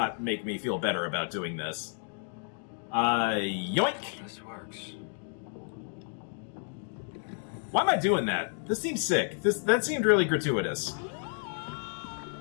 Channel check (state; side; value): silent; right; 56 dB below the other